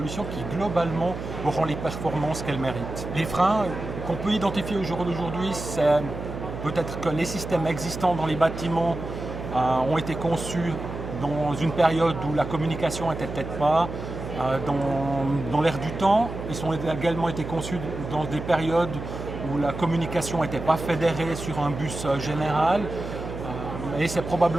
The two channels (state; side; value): noise; right; hum, 8 dB below the sound